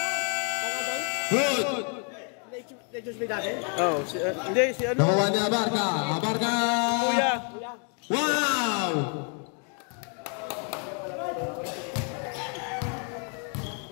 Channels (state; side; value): quieter; right; 39.7 dB